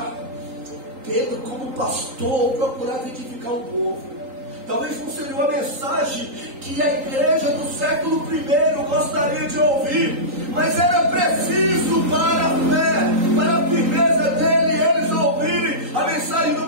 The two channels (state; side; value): late; left; 3.8 ms